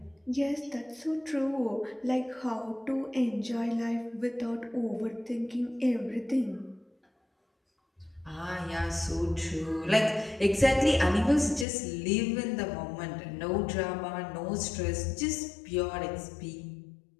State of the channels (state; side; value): drops out; right; at 11.7 s